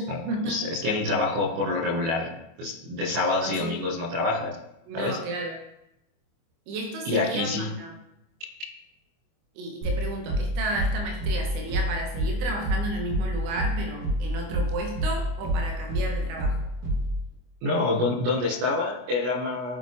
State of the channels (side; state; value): left; late; 25 ms